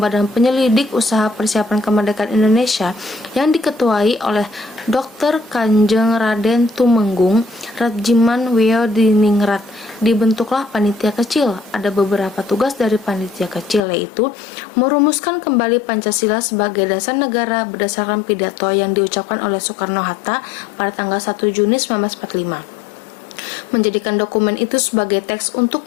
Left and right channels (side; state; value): right; drops out; at 13.9 s